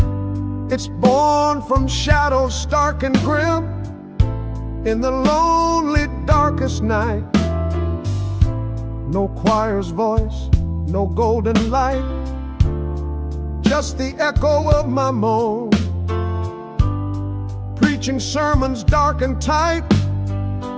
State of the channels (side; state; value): both; identical; correlation 1.00